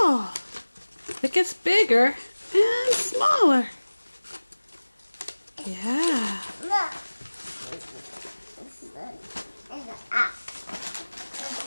It gets bigger and smaller. Yeah.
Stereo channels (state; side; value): inverted; both; correlation -1.00